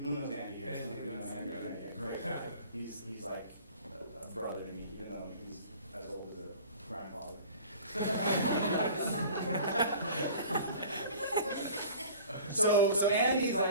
knows Andy here? Andy, Some of you know that's Andy, the guy. yeah, great guy. He's like a brother to me, even though he's as old as a grandfather. So Andy's like,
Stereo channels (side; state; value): both; inverted; correlation -0.44